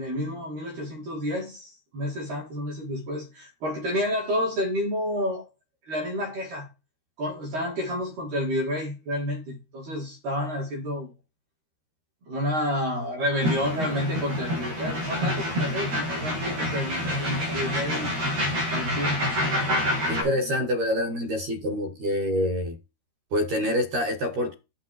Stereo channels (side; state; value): left; late; 13 ms